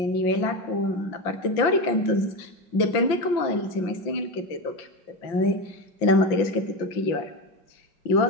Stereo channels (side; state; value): right; late; 5.8 ms